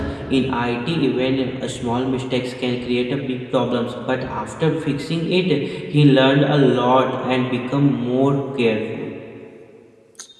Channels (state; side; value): identical; both; correlation 1.00